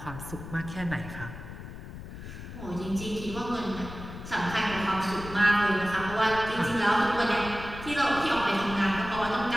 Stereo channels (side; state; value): left; noise; rumble, 11 dB below the sound